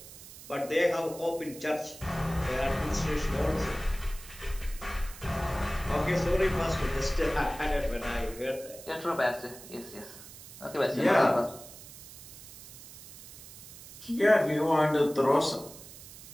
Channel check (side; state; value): right; noise; hiss, 16 dB below the sound